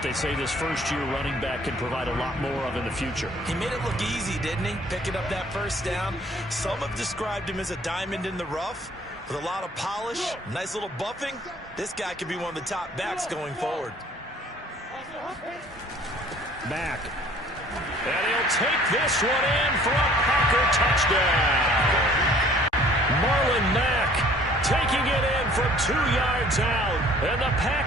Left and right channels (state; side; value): normal; both; correlation 0.54